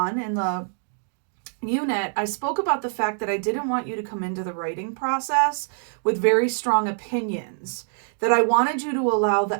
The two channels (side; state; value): left; silent; digital silence